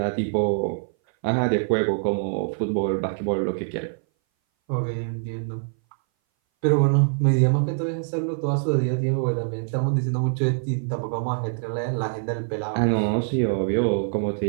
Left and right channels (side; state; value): left; silent; 59 dB below the other